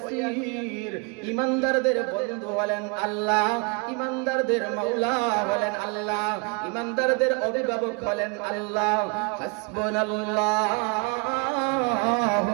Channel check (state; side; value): quieter; left; 31.9 dB